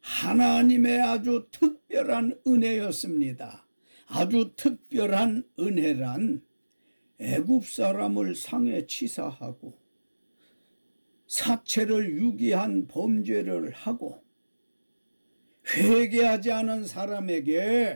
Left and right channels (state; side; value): inverted; both; correlation -1.00